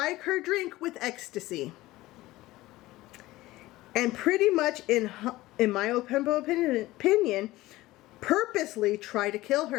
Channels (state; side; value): quieter; right; 17.9 dB